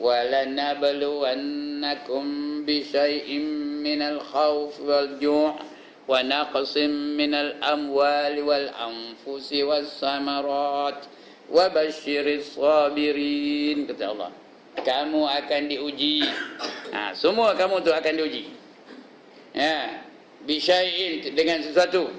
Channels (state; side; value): identical; both; correlation 1.00